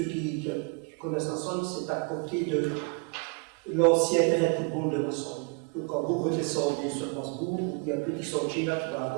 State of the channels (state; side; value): quieter; left; 36.5 dB